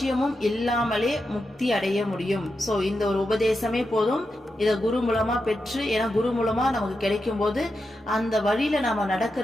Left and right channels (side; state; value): both; normal; correlation 0.88